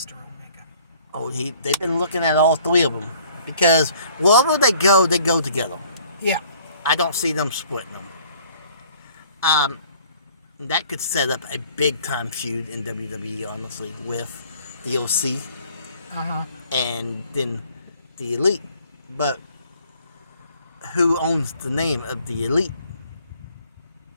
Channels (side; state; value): both; inverted; correlation -0.56